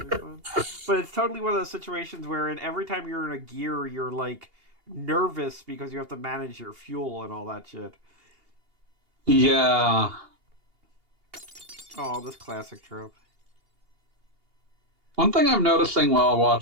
be fun? But it's totally one of those situations where every time you're in a gear, you're, like, nervous because you have to manage your fuel and all that shit. Yeah. Oh, this classic trope. One thing I'm noticing while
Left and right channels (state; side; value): late; left; 2.8 ms